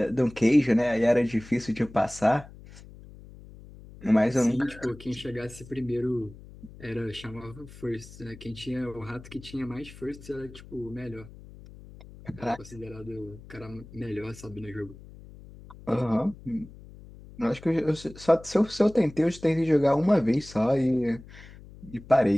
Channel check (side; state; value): left; noise; hum, 18 dB below the sound